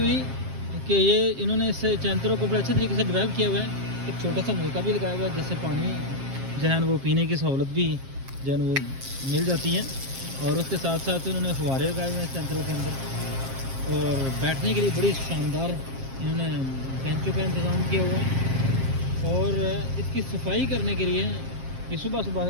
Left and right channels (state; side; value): late; left; 7.5 ms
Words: کہ یہ انہوں نے اس چنترو کو بڑے اچھے طریقے سے ڈیولپ کیا ہوا ہے۔ ایک چھوٹا سا نلکا بھی لگایا ہوا ہے جس سے پانی جو ہے وہ پینے کی سہولت بھی جو ہے وہ مل جاتی ہے، اور اس کے ساتھ ساتھ انہوں نے فوارے لگائے ہوئے ہیں چنترو کے اندر، اور بیٹھنے کے لیے بڑی شاندار انہوں نے بینچوں کا انتظام کیا ہوا ہے۔ اور اس کی صفائی کرنے کے لیے یہ صبح صبح